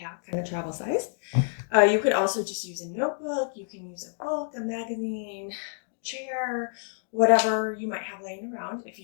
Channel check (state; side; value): silent; right; digital silence